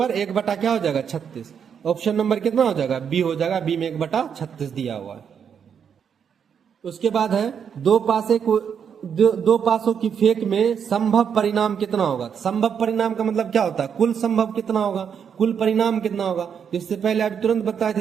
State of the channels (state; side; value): quieter; left; 7.5 dB